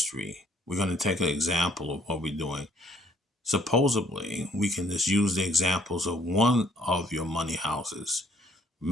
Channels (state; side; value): normal; both; correlation 0.63